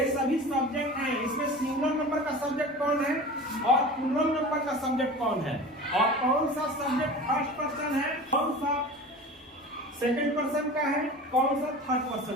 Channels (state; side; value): normal; both; correlation 0.36